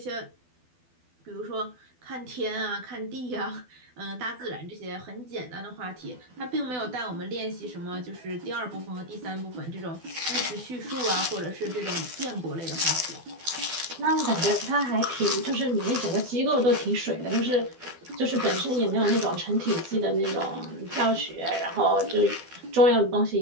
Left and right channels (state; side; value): late; left; 12 ms